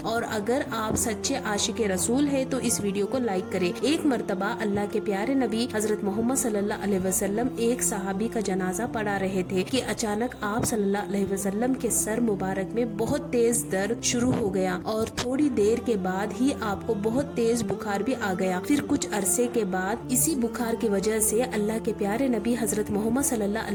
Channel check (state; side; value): identical; both; correlation 1.00